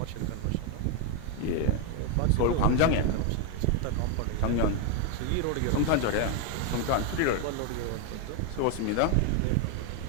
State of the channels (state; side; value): different; both; correlation 0.01